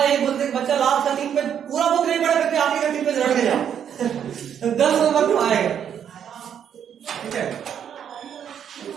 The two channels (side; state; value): left; quieter; 8.7 dB